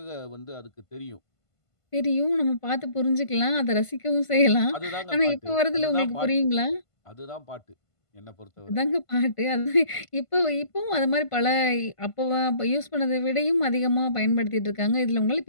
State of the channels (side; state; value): right; late; 1.5 ms